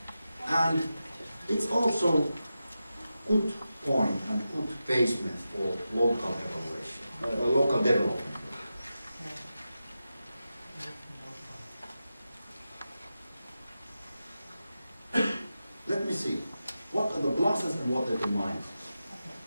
And it's also good point and good basement for local evaluation, local development. Let me see. What are the pluses and what are the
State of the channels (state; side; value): inverted; both; correlation -0.91